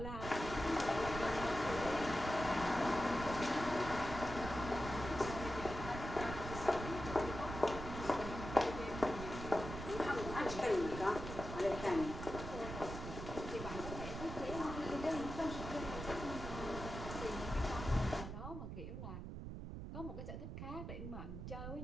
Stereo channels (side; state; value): right; noise; rumble, 7 dB below the sound